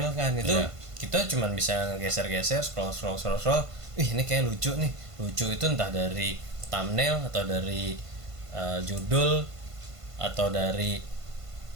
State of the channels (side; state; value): left; late; 1.5 ms